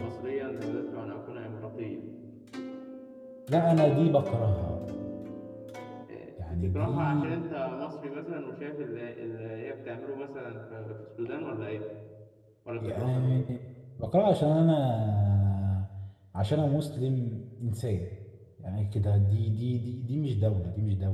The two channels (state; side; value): identical; both; correlation 1.00